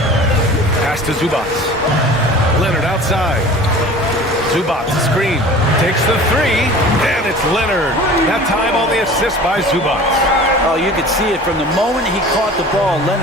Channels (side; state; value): both; normal; correlation 0.42